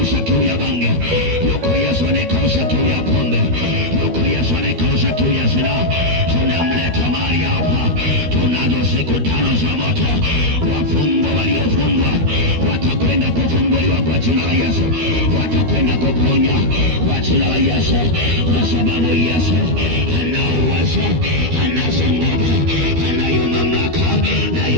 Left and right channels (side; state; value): left; late; 13 ms